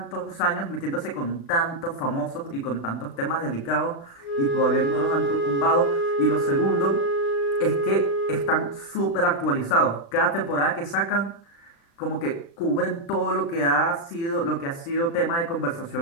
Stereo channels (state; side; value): late; right; 36 ms